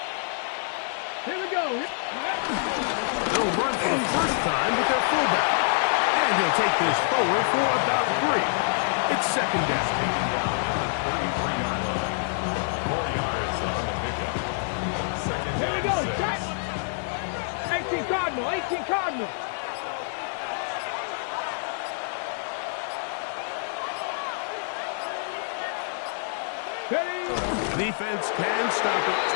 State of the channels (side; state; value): right; silent; 60 dB below the other